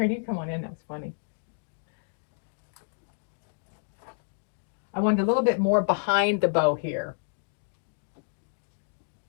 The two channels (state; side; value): silent; right; digital silence